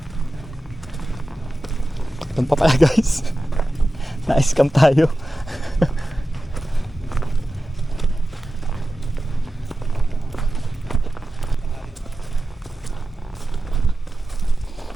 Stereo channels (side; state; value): both; normal; correlation 0.93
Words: Doon pa pala guys. Na-scam tayo.